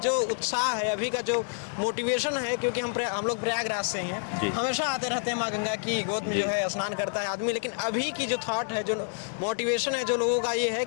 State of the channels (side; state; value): right; silent; digital silence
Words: उत्साह है, अभी का जो मोटिवेशन है, क्योंकि हम लोग प्रयागराज से ही हैं, हमेशा आते रहते हैं माँ गंगा की गोद में जो है स्नान करता है आदमी, लेकिन अभी की जो थॉट है, जो मोटिवेशन है जो लोगों का, ये है